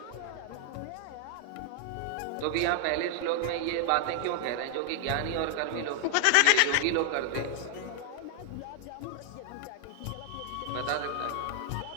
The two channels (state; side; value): different; both; correlation 0.00